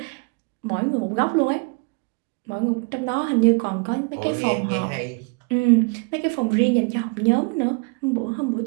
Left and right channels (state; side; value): quieter; left; 32.8 dB